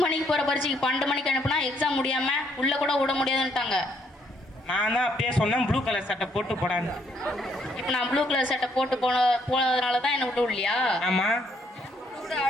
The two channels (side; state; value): both; normal; correlation 0.69